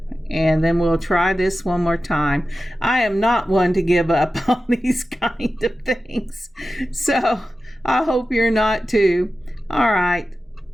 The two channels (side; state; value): both; normal; correlation 0.93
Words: And then we'll try this one more time. I am not one to give up on these kind of things, so I hope you're not too. All right.